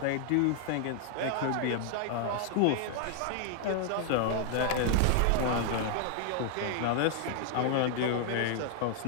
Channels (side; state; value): both; different; correlation 0.00